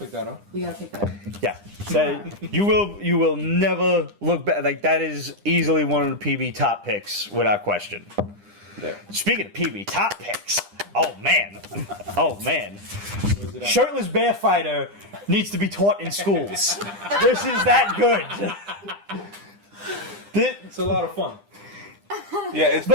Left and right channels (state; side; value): late; left; 9.9 ms